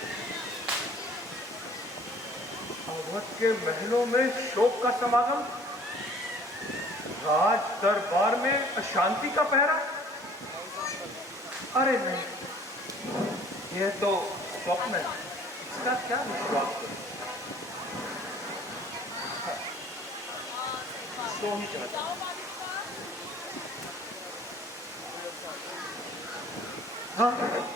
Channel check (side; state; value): both; normal; correlation 0.52